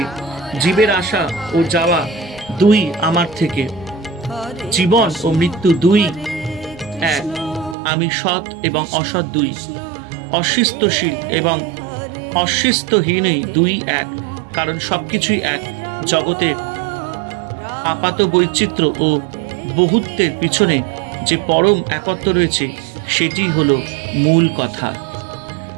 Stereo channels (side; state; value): left; drops out; at 7.8 s